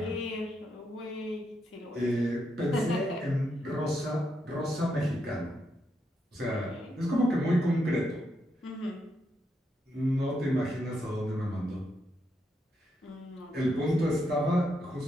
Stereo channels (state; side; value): normal; both; correlation 0.81